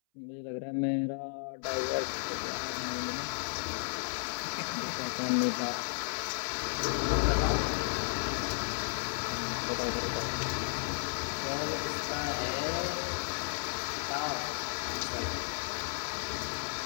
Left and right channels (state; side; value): silent; right; 55 dB below the other